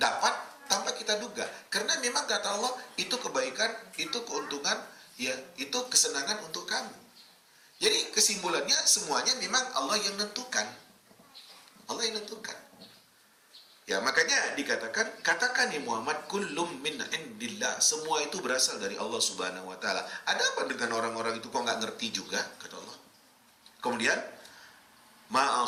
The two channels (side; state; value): both; identical; correlation 1.00